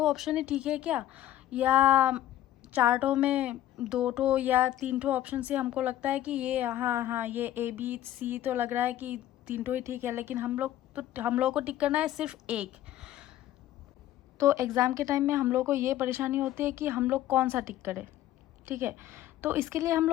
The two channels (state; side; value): quieter; right; 13.2 dB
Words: ही ठीक है क्या, या चार्टों में 2 या 3 ऑप्शन से हमको लगता है कि ये हाँ हाँ ये ए बी सी तो लग रहा है कि 3 ही ठीक है, लेकिन हम लोग को टिक करना है सिर्फ एक। तो एग्ज़ाम के टाइम में हम लोग को ये परेशानी होती है कि हम लोग कौन सा टिक करें, ठीक है। तो इसके लिए हम